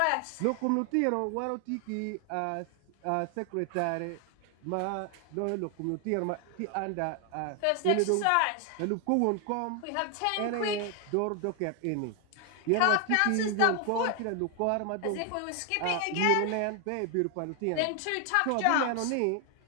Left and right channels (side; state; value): both; different; correlation 0.00